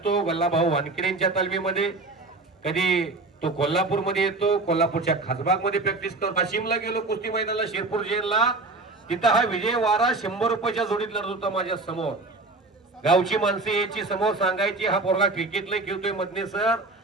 गल्लाभाऊ वानखेडेंच्या तालमीमध्ये, कधी तो कोल्हापूर मध्ये येतो, कोल्हापूरच्या खासबाग मध्ये प्रॅक्टिस करतो. वाशिमला गेलो कुस्ती मैदानाला, शिरपूर जेलला, तिथं हा विजय वारा 100 रुपयाच्या जोडीत लढत होता माझ्या समोर. गावची माणसं याची समोर सांगायची, हा पोरगा क्रिकेटला खेळतोय मधने सर,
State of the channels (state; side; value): quieter; left; 3.3 dB